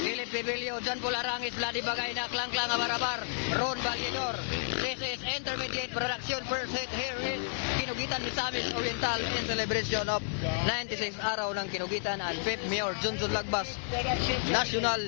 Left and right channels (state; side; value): silent; right; digital silence